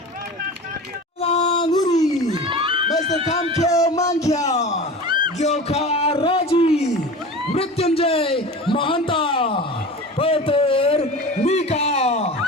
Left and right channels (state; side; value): normal; both; correlation 0.34